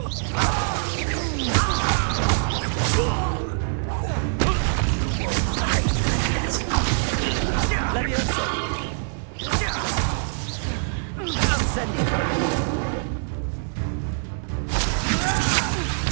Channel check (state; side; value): silent; left; digital silence